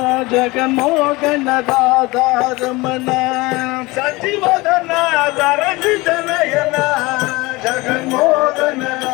जगन्मोहन राधा रमण सचिवदना सरसि जनयना जगन्मोहन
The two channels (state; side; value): quieter; right; 22.5 dB